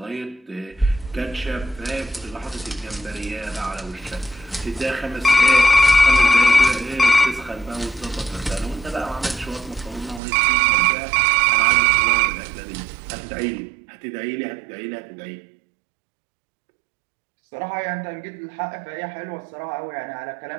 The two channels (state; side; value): drops out; left; at 10.2 s